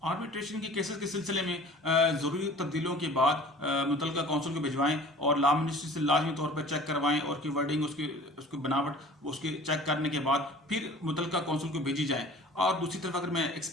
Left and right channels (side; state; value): both; normal; correlation 0.45